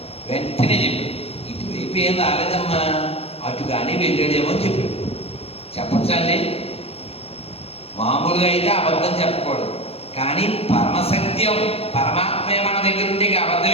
వెంటనే చెప్పాడు, ఇటువైపు ఏం రాలేదమ్మా, అటుగానే వెళ్ళాడేమో అని చెప్పాడు. చెప్పచ్చండి, మామూలుగా అయితే అబద్ధం చెప్పకూడదు, కానీ పరమసత్యం పరమాత్మే మన దగ్గర ఉంటే అబద్ధం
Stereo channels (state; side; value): late; right; 0.29 ms